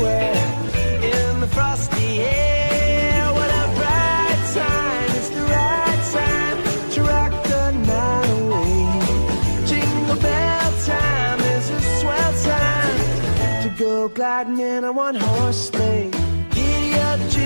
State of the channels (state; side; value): inverted; both; correlation -1.00